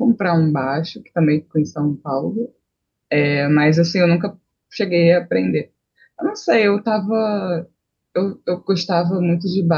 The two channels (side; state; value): both; identical; correlation 1.00